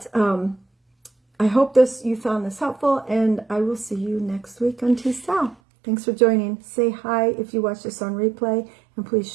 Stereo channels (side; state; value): left; drops out; at 5.6 s